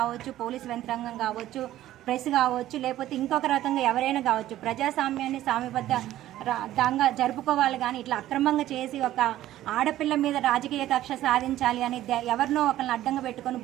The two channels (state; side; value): quieter; left; 13.9 dB